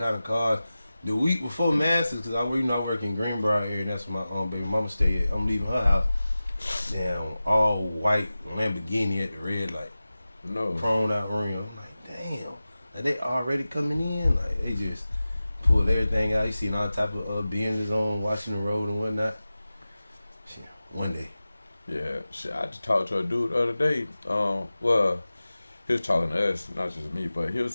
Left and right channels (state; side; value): inverted; both; correlation -0.96